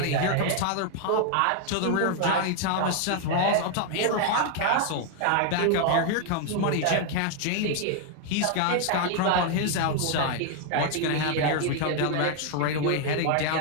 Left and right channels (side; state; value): both; different; correlation 0.00